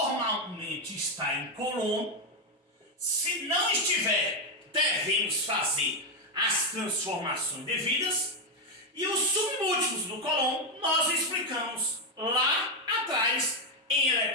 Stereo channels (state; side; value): normal; both; correlation 0.05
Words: está em coulomb. Se não estiver, devemos fazer as transformações devidas. E os submúltiplos do coulomb nós explicamos lá atrás em